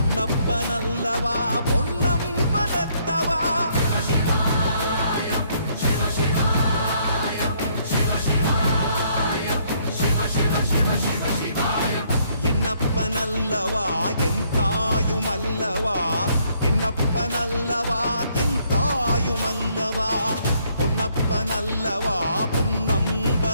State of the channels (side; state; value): both; inverted; correlation -0.68